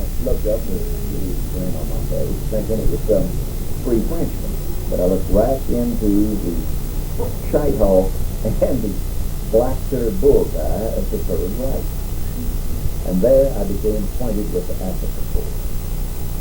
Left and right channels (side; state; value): both; identical; correlation 1.00